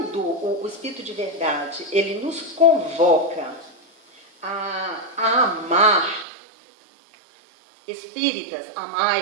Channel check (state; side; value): drops out; left; at 6.2 s